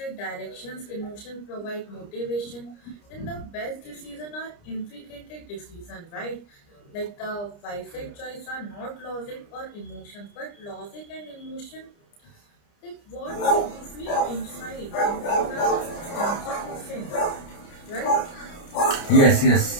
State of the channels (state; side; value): late; right; 29 ms